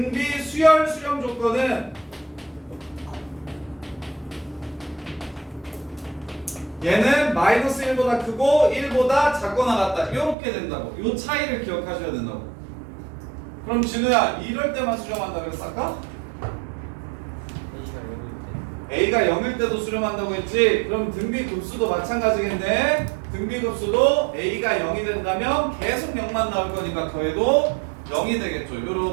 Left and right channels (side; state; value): left; drops out; at 10.4 s